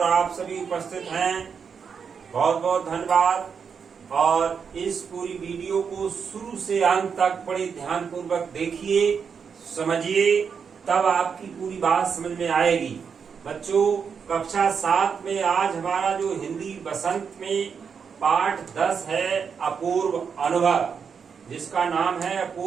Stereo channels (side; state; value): left; quieter; 6.4 dB